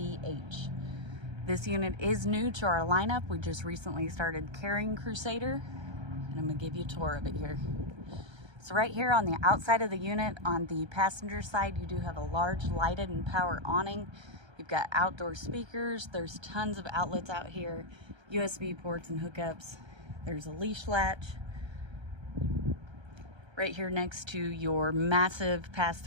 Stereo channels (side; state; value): left; late; 1.3 ms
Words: This unit is new to our lineup. We just recently started carrying Crusader, and I'm going to give you a tour of it here. So right here on the outside of the unit, on the passenger side, you do have a large lighted and power awning. You've got outdoor speakers. There's tons of outlets out here, USB ports and hookups. There's a leash latch right here next to your massive